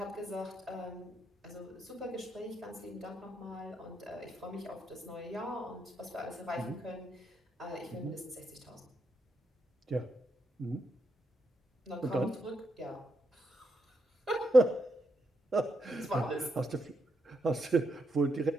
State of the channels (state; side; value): normal; both; correlation 0.81